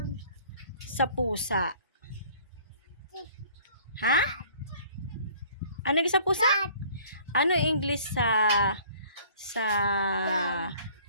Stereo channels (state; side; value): inverted; both; correlation -0.53